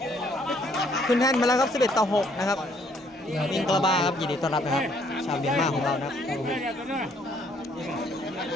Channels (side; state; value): both; normal; correlation 0.65